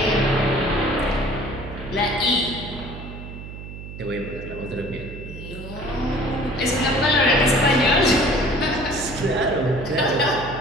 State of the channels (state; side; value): noise; right; hum, 11 dB below the sound